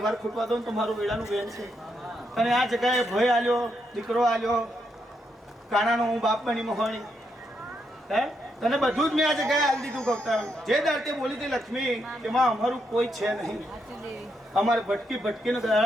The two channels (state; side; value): normal; both; correlation 0.80